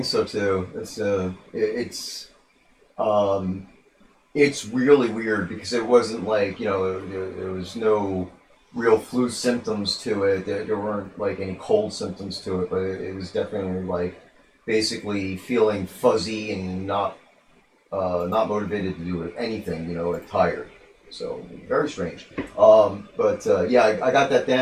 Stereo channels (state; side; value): identical; both; correlation 1.00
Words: so too. It's really weird because it wasn't like there was no real flu symptoms to it. There weren't like any cold symptoms to it, but it was definitely like basically feeling fuzzy and not motivated to do anything. Like tired. So very strange. Yeah, I got that